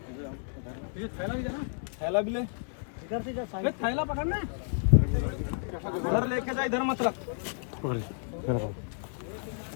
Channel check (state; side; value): silent; right; 57 dB below the other